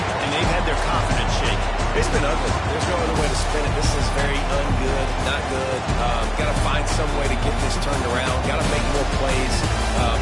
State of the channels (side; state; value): both; identical; correlation 1.00